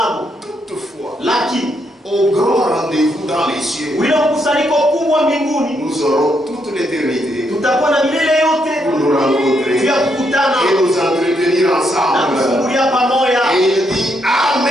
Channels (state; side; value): normal; both; correlation 0.77